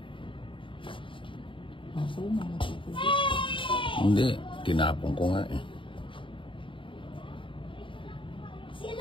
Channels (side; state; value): right; late; 0.25 ms